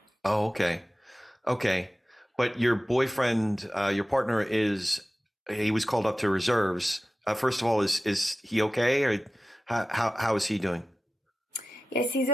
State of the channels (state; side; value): normal; both; correlation 0.94